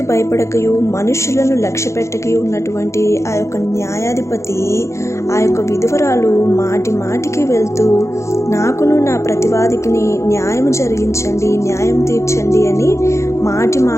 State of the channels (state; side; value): late; right; 0.14 ms